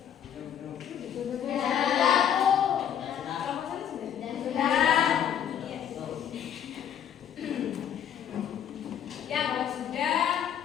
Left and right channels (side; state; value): right; quieter; 9.3 dB